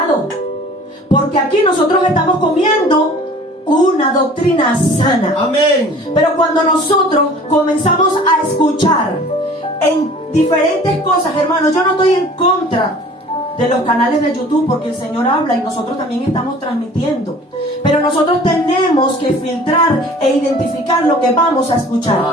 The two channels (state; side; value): normal; both; correlation 0.47